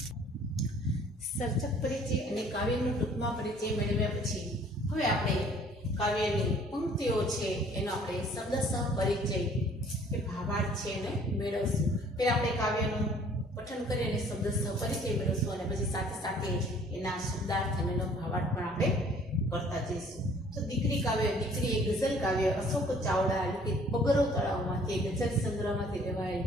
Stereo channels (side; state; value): both; normal; correlation 0.56